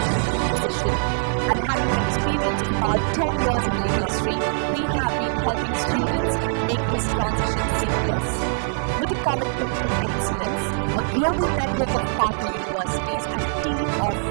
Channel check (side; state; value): left; silent; digital silence